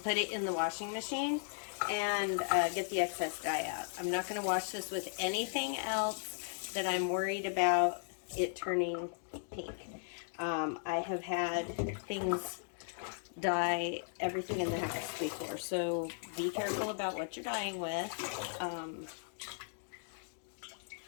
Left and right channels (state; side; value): silent; right; digital silence